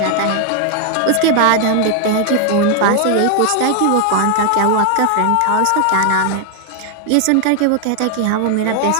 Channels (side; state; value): both; different; correlation 0.00